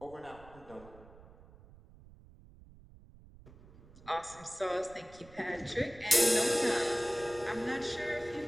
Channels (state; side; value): noise; right; rumble, 22 dB below the sound